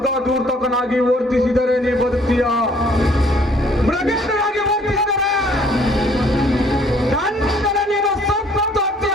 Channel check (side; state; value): both; normal; correlation 0.60